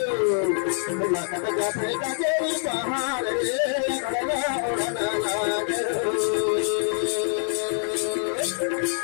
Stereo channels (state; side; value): silent; right; 62 dB below the other